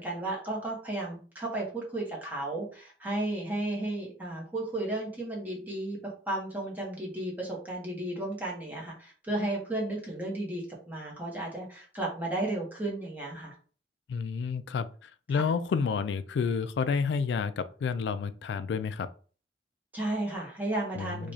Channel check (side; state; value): both; normal; correlation 0.48